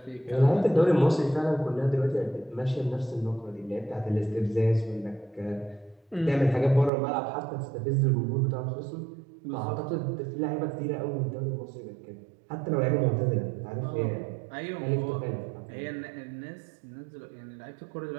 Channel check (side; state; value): left; drops out; at 6.9 s